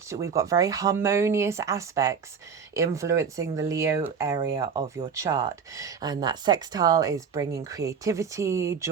very harmonious aspects influencing the Leo area of your chart. And that sextile is bringing creativity,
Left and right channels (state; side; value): quieter; left; 6.5 dB